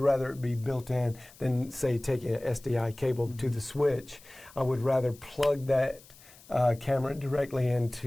it be built in than, say, taking an SDI cable to the switch. I would rather plug that camera directly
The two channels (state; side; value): noise; left; hiss, 23 dB below the sound